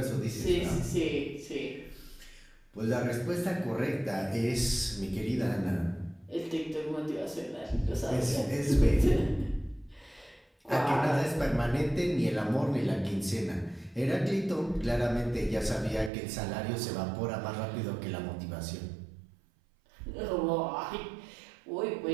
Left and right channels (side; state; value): left; drops out; at 16.1 s